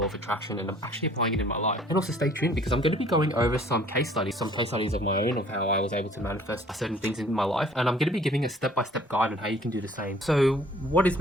of attraction and actually applying it in my life. And also stay tuned because I'm going to be going over some case studies of my own of how I was able to manifest certain things in my life. And I'm going to be giving a step-by-step guide on how you can do the same. So what is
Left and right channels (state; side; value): normal; both; correlation 0.55